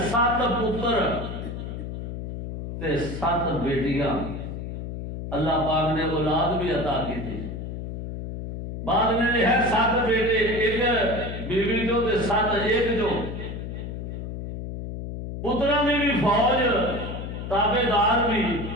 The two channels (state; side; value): noise; left; hum, 7 dB below the sound